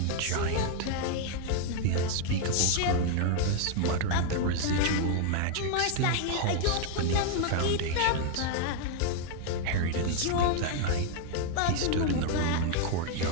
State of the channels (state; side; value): different; both; correlation 0.00